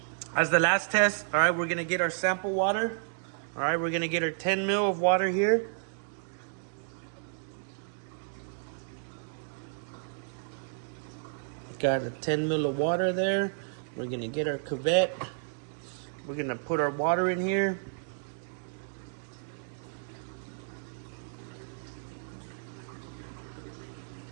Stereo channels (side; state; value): left; silent; digital silence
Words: test. All right, we're gonna get our sample water. All right, we're gonna get our 10 ml of water here. Got a 10 ml of water there. We're gonna get our cuvette. We're gonna put our water in here.